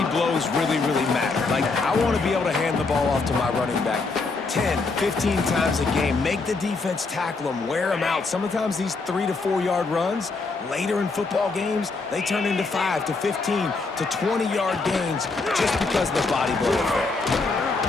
blows really, really matter. Like, I want to be able to hand the ball off to my running back 10, 15 times a game. Make the defense tackle them, wear them out. Sometimes these 3 to 4 yard runs, later in football games, they turn into 5 to 15 to 20 yard gains just because of the body blow effect.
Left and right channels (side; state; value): right; quieter; 3.9 dB